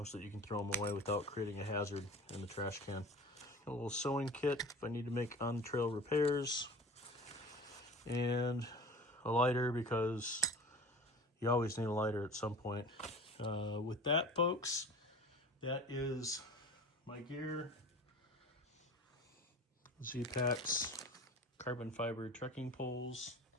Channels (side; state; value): both; normal; correlation 0.39